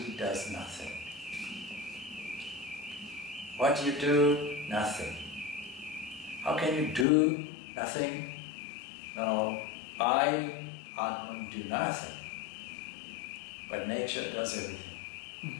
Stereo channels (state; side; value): drops out; right; at 7.1 s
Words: does nothing. What do you do? Nothing. How can you do nothing? No, I, Atman, do nothing. But nature does everything.